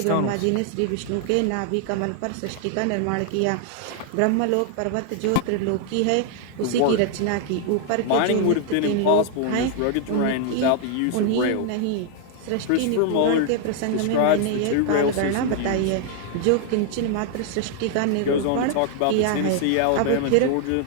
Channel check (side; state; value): both; different; correlation 0.00